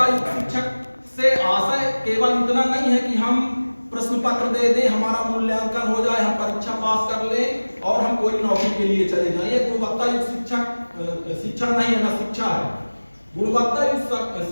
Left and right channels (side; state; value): both; inverted; correlation -1.00